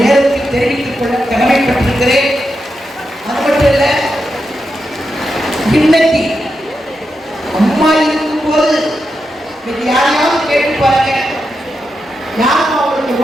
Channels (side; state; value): both; normal; correlation 0.87